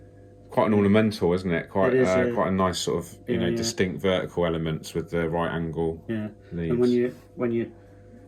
Quite an ornamental, isn't it? Quite quite a nice sort of distinct vertical elements with the right angle. Yeah. Leaves. And when you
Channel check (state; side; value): identical; both; correlation 1.00